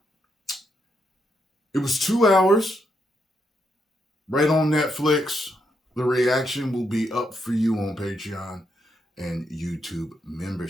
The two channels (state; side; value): normal; both; correlation 0.79